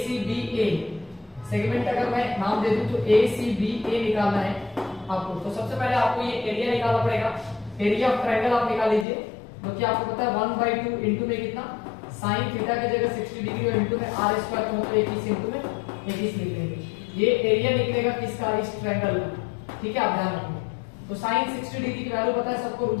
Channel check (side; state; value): right; drops out; at 9.1 s